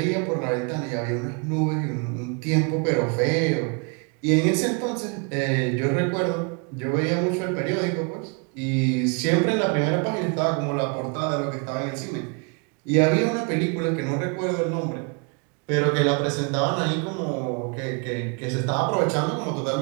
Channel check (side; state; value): left; quieter; 34.9 dB